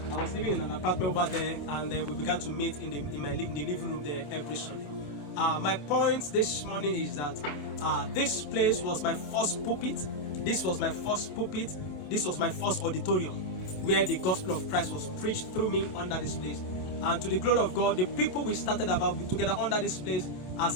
I was living in an apartment over there, and then we began to meet in the living room there every Sunday. My point this morning is that this place was my first pulpit. This was my first pulpit. This was my first auditorium where the gospel of Christ was preached through me under this place. And to the glory of God, the people we started about together under this place,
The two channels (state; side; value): late; right; 27 ms